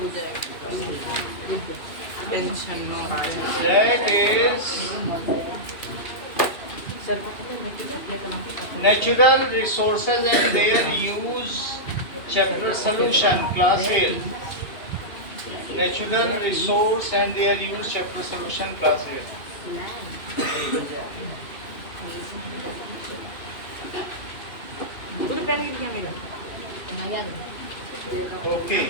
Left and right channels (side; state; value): right; late; 2.7 ms